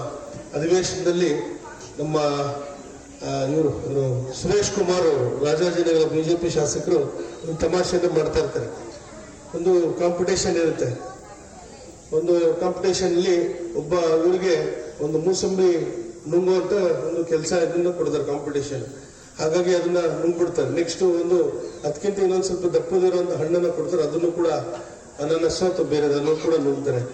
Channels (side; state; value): both; identical; correlation 1.00